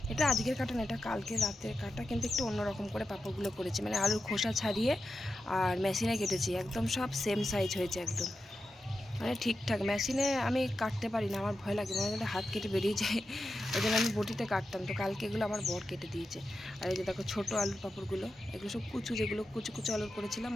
এটা আজকের কাটা না, এটা কালকে রাতের কাটা, কিন্তু একটু অন্যরকম করে পাঁপড়গুলো করেছি। মানে আলুর খোসা ছাড়িয়ে আর মেশিনে কেটেছি, একদম সব সেম সাইজ হয়েছে একদম। মানে ঠিকঠাক। মেশিনে আমি কাটতে পারি না, আমার ভয় লাগে, মনে হয় হাত কেটে বেরিয়ে যায়। ওই জন্য আমি বটিতে কাটতাম। তো কালকে এগুলো আমার বর কেটে দিয়েছে। আর এই যে দেখো ছোটো আলুর পাঁপড়গুলো, এগুলো সব কুচু, যেগুলো কুচু কুচু আলুর করেছিলাম,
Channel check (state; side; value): normal; both; correlation 0.90